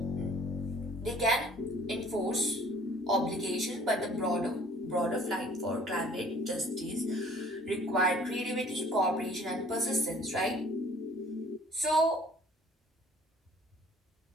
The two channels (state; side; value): normal; both; correlation 0.54